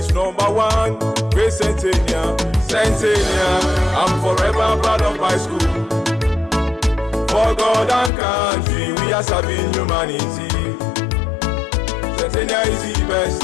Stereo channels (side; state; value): right; drops out; at 8.1 s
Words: number one. Great Centennial, Centennial, I'm forever proud of my school. For God and country, we are serving humanity. Centennial is the best